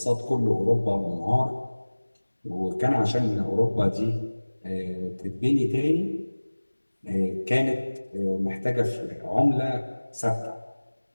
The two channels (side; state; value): both; inverted; correlation -1.00